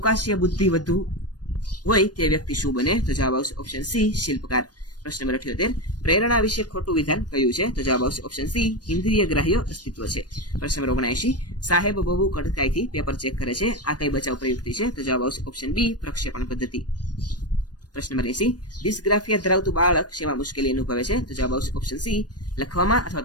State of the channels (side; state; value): right; late; 0.69 ms